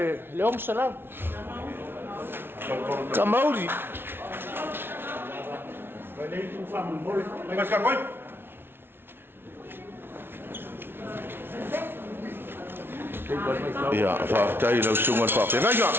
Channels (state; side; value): late; left; 0.11 ms